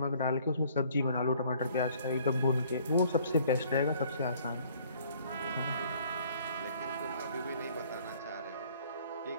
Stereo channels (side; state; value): both; inverted; correlation -0.58